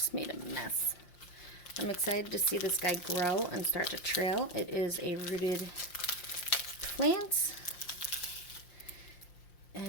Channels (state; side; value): late; right; 5.7 ms